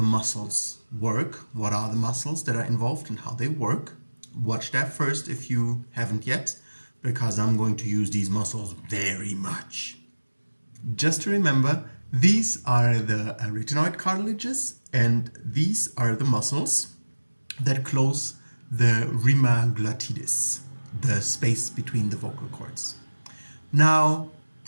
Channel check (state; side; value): inverted; both; correlation -1.00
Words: muscles work, what are the muscles that are involved and how they work. Watch that first if you haven't yet, because I'm going to use these muscles very much. Just to remember, these are the arytenoid cartilages and these are the muscles that close the rima glottidis, the space between the vocal cords. Now,